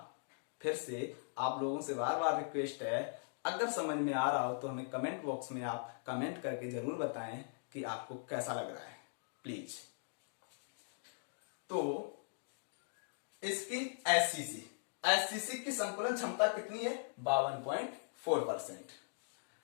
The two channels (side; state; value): right; silent; digital silence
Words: फिर से आप लोगों से बार बार रिक्वेस्ट है, अगर समझ में आ रहा हो तो हमें कमेंट बॉक्स में आप कमेंट करके जरूर बताएं कि आपको कैसा लग रहा है, प्लीज। तो इसकी एससीसी, एससीसी की संकुलन क्षमता कितनी है? 52.4%।